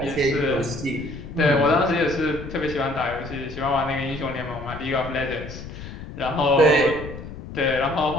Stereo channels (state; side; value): noise; left; rumble, 11 dB below the sound